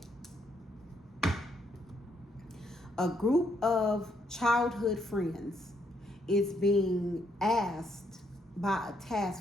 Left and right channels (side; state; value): both; normal; correlation 0.74